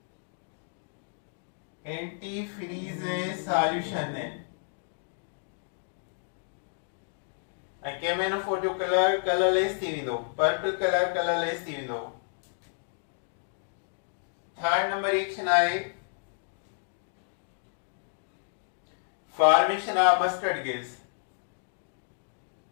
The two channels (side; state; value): right; silent; digital silence